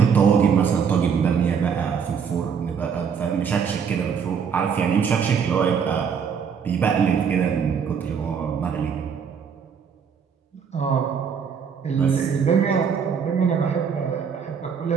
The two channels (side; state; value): left; quieter; 6.8 dB